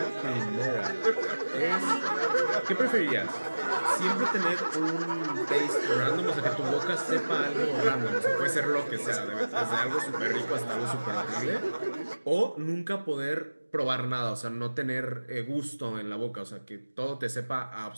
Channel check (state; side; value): inverted; both; correlation -1.00